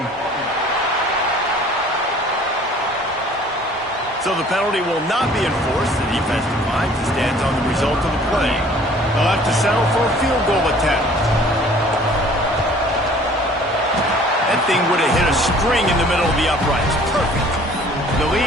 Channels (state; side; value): normal; both; correlation 0.52